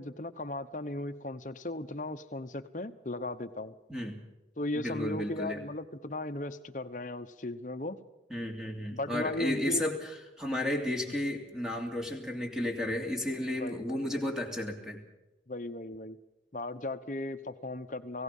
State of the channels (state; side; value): normal; both; correlation 0.55